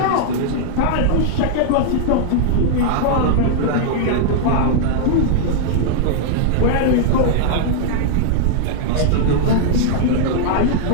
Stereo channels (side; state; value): both; different; correlation -0.01